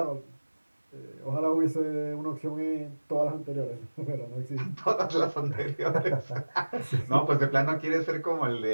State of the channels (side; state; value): both; inverted; correlation -1.00